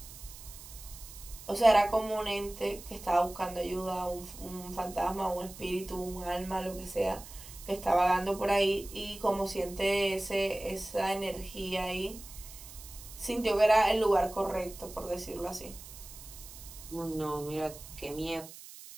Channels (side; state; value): right; noise; hiss, 15 dB below the sound